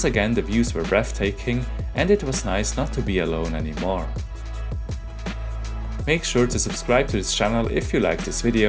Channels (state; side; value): identical; both; correlation 1.00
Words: again, the views were breathtaking and it was nice not to be alone anymore. Make sure to subscribe to this channel if you like this